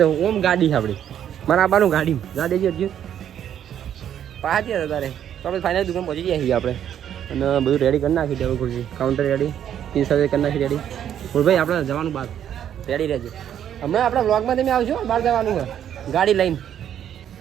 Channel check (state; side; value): quieter; left; 9.9 dB